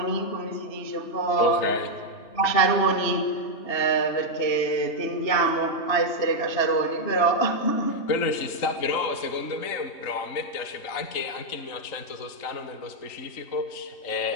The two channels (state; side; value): late; right; 3.8 ms